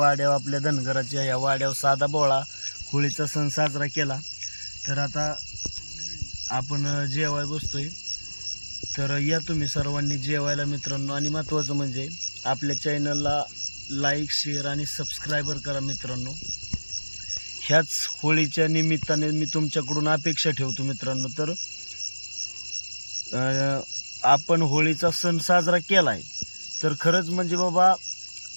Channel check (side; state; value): both; inverted; correlation -1.00